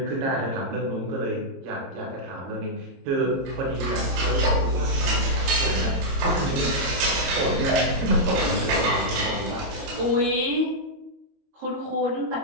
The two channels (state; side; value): late; left; 22 ms